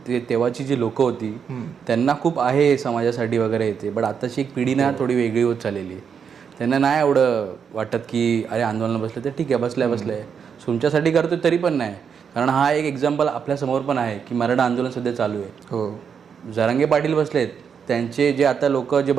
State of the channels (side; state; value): left; quieter; 6.9 dB